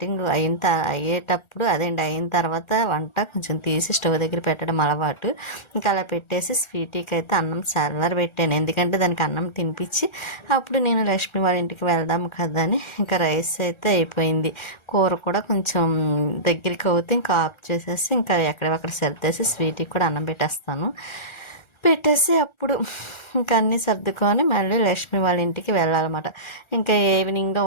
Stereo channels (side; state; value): right; late; 1.4 ms